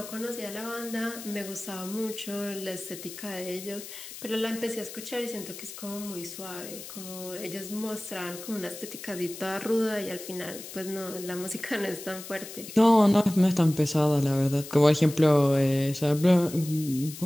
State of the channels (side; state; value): left; noise; hiss, 12 dB below the sound